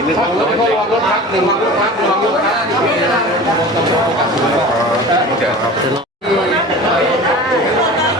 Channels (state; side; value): normal; both; correlation 0.37